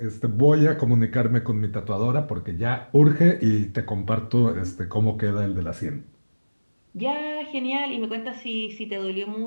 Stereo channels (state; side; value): inverted; both; correlation -1.00